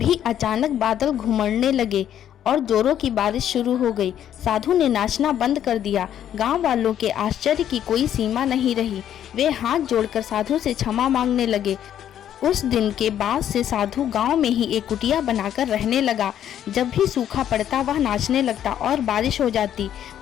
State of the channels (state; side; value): quieter; right; 10.4 dB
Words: अचानक बादल घुमड़ने लगे और जोरों की बारिश शुरू हो गई। साधु ने नाचना बंद कर दिया। गांव वालों के आश्चर्य की कोई सीमा नहीं रही। वे हाथ जोड़कर साधु से क्षमा मांगने लगे। उस दिन के बाद से साधु गांव में ही एक कुटिया बनाकर रहने लगा। जब भी सूखा पड़ता वह नाचने लगता और बारिश हो जाती।